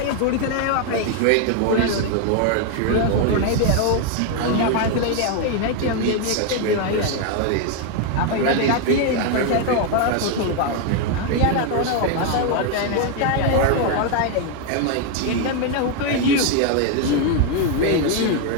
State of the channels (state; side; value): different; both; correlation 0.01